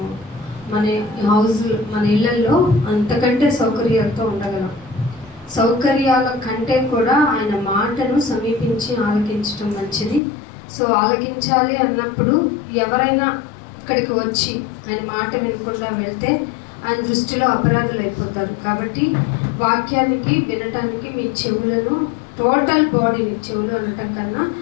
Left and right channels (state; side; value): drops out; right; at 10.2 s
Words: మన హౌస్ మన ఇళ్లలో అంతకంటే సౌకర్యాలతో ఉండగలం. సౌకర్యాల కంటే కూడా ఆయన మాటను సమీపించి ఆలకించడం మంచిది. సో ఆలకించాలి అన్నప్పుడు ఎవరైనా ఇక్కడికి వచ్చి ఆయన మాట వినకుండా వెళ్తే ఆయన దృష్టిలో అపరాధులు అయిపోతారు. కాబట్టి వాక్యానికి వినటానికి మీ చెవులను, టోటల్ బాడీని, చెవులు అనటం కన్నా